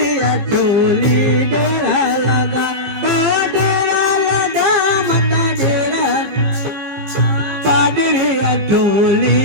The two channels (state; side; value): late; left; 15 ms